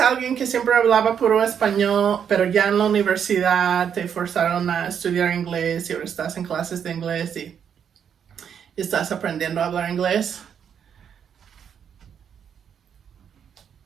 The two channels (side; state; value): left; quieter; 8.0 dB